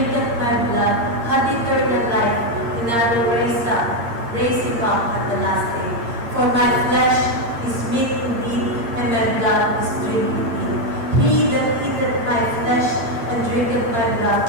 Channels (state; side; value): late; left; 8.6 ms